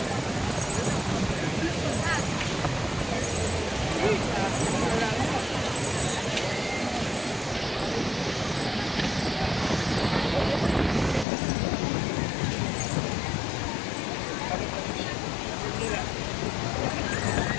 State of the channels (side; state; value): right; drops out; at 11.2 s